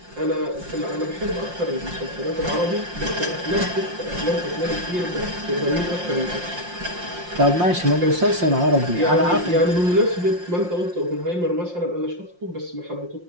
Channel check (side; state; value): left; late; 5.7 ms